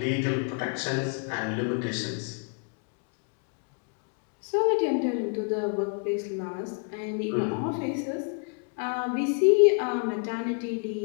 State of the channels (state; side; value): quieter; right; 39.7 dB